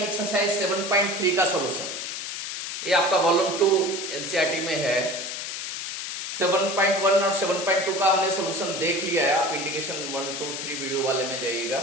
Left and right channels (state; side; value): noise; left; hiss, 5 dB below the sound